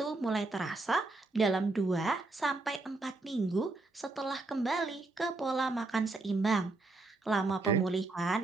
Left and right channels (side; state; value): left; quieter; 3.2 dB